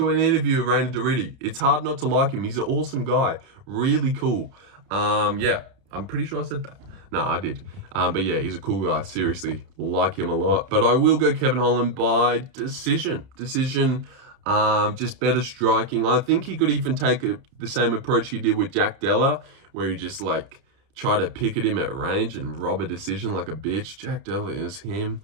an interview of Reina Doriti. It's hard not to like him. He's an awesome guy. Really cool. Yeah, I'm pretty sure I said that. No, I did. But yeah, he's a cool guy. Seriously, like him a lot. But I will go Kevin Holland by decision. Just better striking. I think he could even take the same approach he did with Jack Della, where he just like try to pick at him at range and rob a decision like a bitch. Jack Della is him.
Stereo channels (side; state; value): left; late; 30 ms